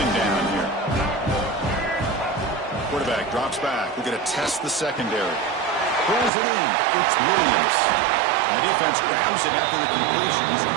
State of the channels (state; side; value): drops out; left; at 6.3 s